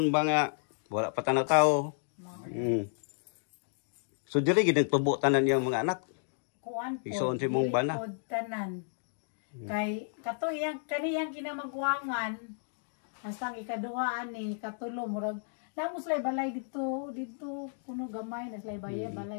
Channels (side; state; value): right; silent; digital silence